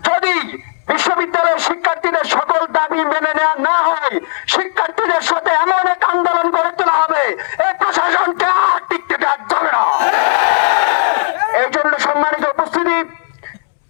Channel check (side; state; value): right; silent; digital silence